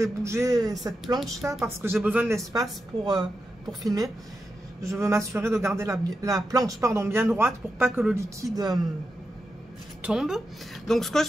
bouger cette planche-là, parce que j'ai besoin de l'espace pour filmer, je veux m'assurer de garder la planche bien droite pour pas que le liquide... tombe. Donc ce que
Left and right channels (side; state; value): both; normal; correlation 0.88